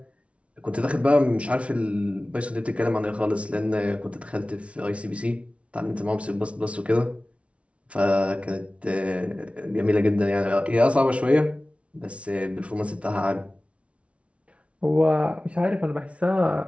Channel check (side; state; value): left; late; 0.062 ms